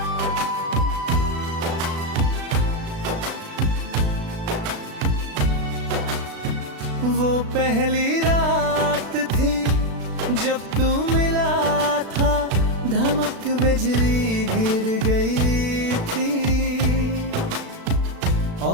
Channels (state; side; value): late; left; 36 ms